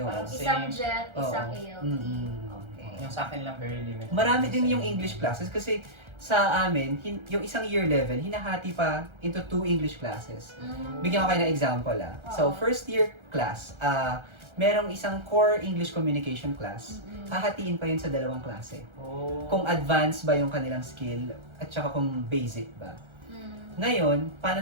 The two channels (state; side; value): late; left; 1.3 ms